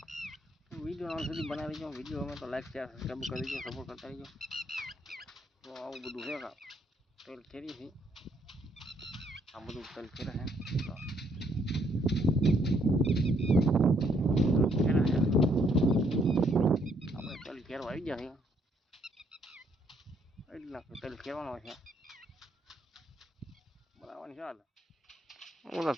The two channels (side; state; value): both; normal; correlation 0.69